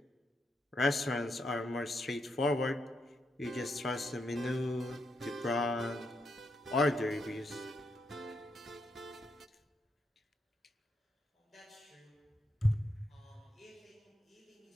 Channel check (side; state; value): both; normal; correlation 0.81